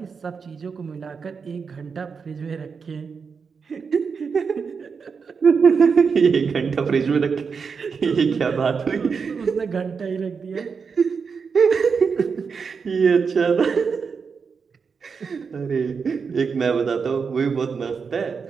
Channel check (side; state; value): left; quieter; 5.7 dB